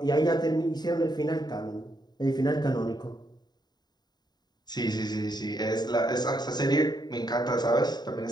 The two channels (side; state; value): right; late; 0.20 ms